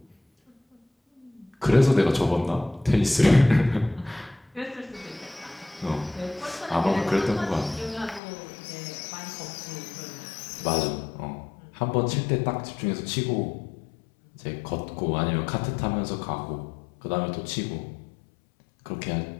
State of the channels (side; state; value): right; drops out; at 8.2 s